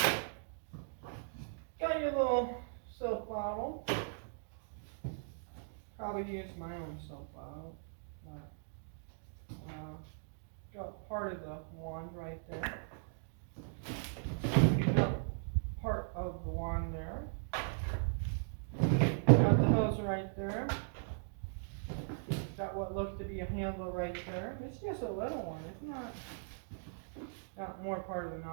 Got your little soap bottle. Probably use my own soap bottle. Got part of the wand right there. Got part of the wand there. Got the hose right there. Got what looks to be a handle right there. It's just a little one. It's not. Got more part of the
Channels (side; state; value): left; silent; digital silence